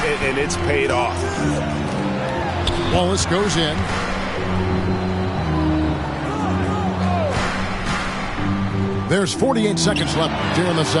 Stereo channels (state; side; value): identical; both; correlation 1.00